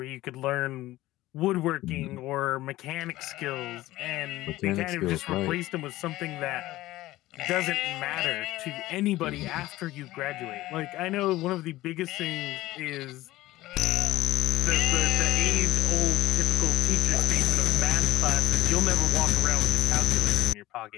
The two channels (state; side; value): quieter; right; 16.9 dB